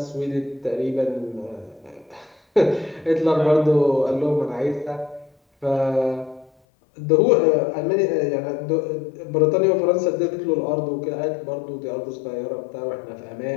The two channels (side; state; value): right; drops out; at 6.5 s